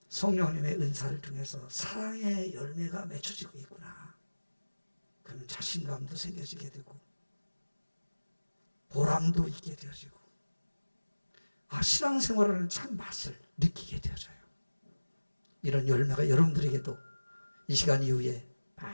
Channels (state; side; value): inverted; both; correlation -1.00